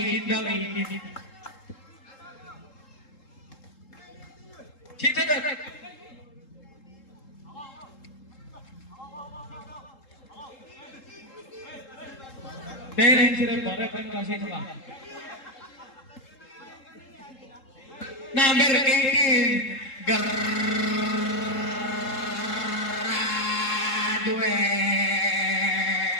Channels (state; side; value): late; right; 3.7 ms